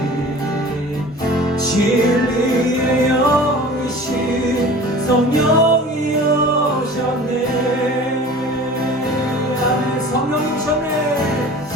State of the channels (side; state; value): both; normal; correlation 0.41